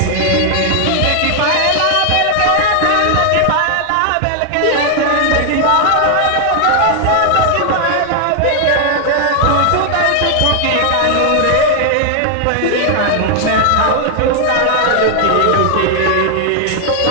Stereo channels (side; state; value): both; different; correlation 0.00